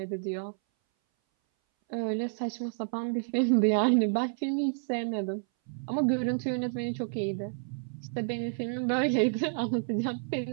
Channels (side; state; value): left; silent; 58 dB below the other